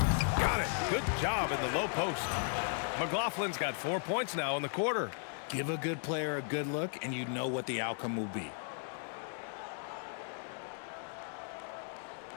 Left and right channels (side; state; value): right; silent; 54 dB below the other